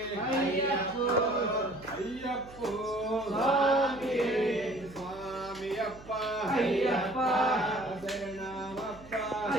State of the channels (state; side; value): noise; right; hum, 20 dB below the sound